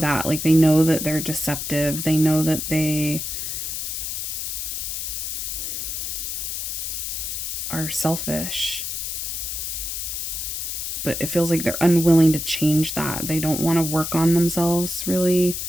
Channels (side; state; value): left; noise; hiss, 4 dB below the sound